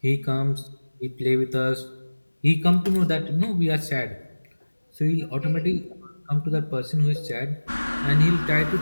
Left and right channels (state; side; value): inverted; both; correlation -1.00